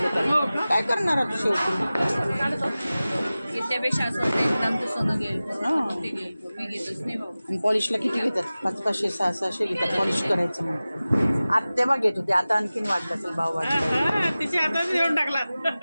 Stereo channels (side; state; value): both; inverted; correlation -0.97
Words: काय करणार आता शेवटी? त्यापेक्षा असं होतं 1 ग्रामचं सोनं घेईल हां. ते घेईल मी घेतच नाही भाऊ. आणि पॉलिशला किती घेतात? 500-500 600 घेतात पॉलिश करायचं म्हणून. आता तेव्हा घेत होते, आता आणखीन वाढलं असेल भाव वाढला. तिच्या हातात घेऊन टाकला.